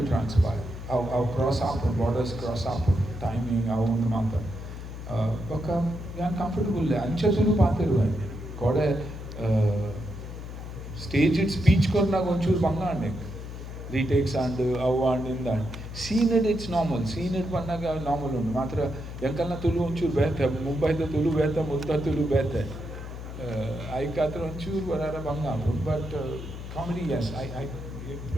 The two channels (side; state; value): left; noise; hum, 9 dB below the sound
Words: transpire. How cross up, borders cross up, timing, how on mata. Baka yan comfortable le ancha tulu paatiruva kode staged speech korna gonchur banga ande retakes and and in that scene it's normal scene it pannaga normal undu matra yankalna tulu onchur bethe Mumbai da tulu bethe mutta tulu bethe I katra onchur varara banga but comedy yes I